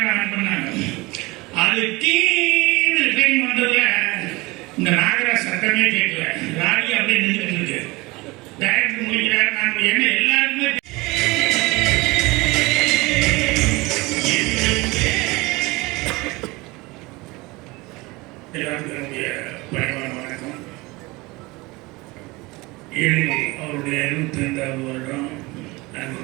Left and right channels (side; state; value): left; quieter; 22.9 dB